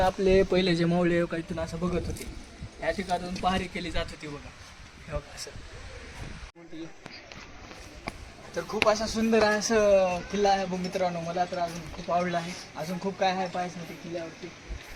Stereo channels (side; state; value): both; identical; correlation 1.00